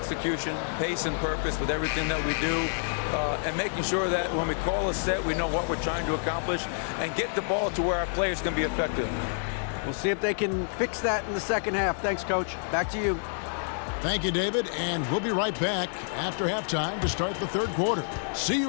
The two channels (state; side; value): silent; right; digital silence